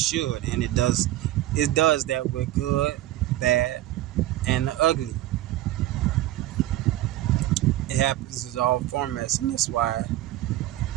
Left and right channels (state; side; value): quieter; left; 15.0 dB